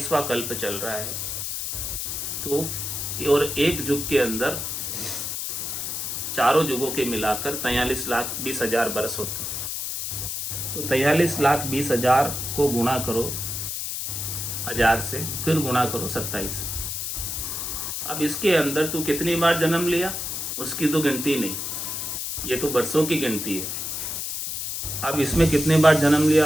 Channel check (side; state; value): left; noise; hiss, 4 dB below the sound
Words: कल्प चल रहा है। तो और एक युग के अंदर चारों युगों के मिलाकर 43,20,000 बरस होते हैं। तो 43,20,000 को गुणा करो 1000 से, फिर गुणा करो 27। अब इसके अंदर तू कितनी बार जन्म लिया उसकी तो गिनती नहीं, ये तो वर्षों की गिनती है। अब इसमें कितने बार जन्म